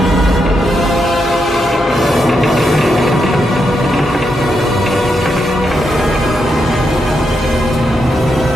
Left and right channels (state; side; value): normal; both; correlation 0.82